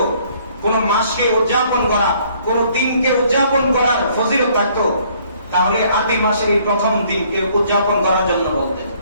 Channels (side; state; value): both; inverted; correlation -0.62